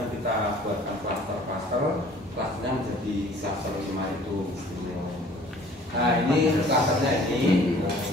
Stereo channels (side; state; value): both; normal; correlation 0.52